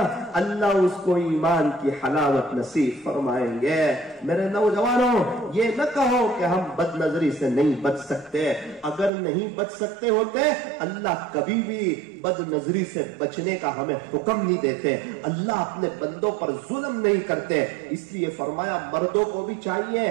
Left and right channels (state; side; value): drops out; left; at 9.1 s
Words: اللہ اس کو ایمان کی حلاوت نصیب فرمائیں گے۔ میرے نوجوانوں، یہ نہ کہو کہ ہم بد نظری سے نہیں بچ سکتے۔ اگر نہیں بچ سکتے ہوتے، اللہ کبھی بھی بد نظری سے بچنے کا ہمیں حکم نہیں دیتے۔ اللہ اپنے بندوں پر ظلم نہیں کرتے، اس لیے فرمایا مردوں کو بھی